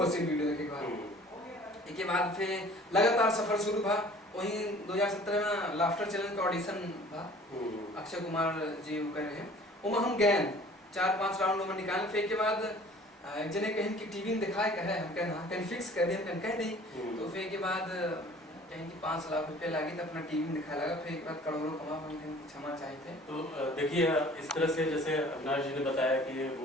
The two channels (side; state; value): both; normal; correlation 0.49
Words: हंसी वीडियो देखे के बाद। इसके बाद फिर लगातार सफर शुरू हुआ। वहीं 2017 में लाफ्टर चैनल का ऑडिशन था, अक्षय कुमार जी वो कर रहे हैं, वो हम गए 4-5 राउंड में निकाल। फिर के बाद एक जने कहीं कि टीवी में दिखाए कहे, हम कहना कहीं फिक्स कर दे, हम कह नहीं। तो फिर के बाद कहीं कि 5 लाख रुपए लगे तो अपना टीवी में दिखाया लगा। फिर एक बार करोड़ों कमा, हम कहीं क्षमा चाहे थे। तो देखिए, इस तरह से जैसे अविनाश जी ने बताया कि